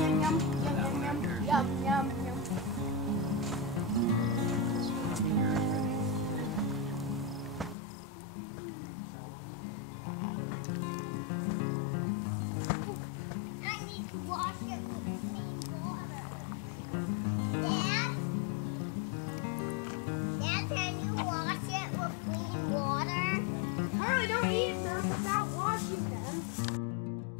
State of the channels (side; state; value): right; drops out; at 7.8 s